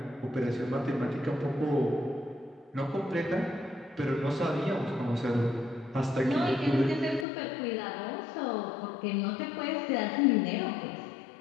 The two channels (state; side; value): drops out; right; at 7.2 s